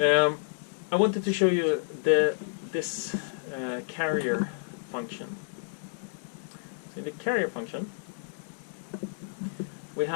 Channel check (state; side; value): silent; right; digital silence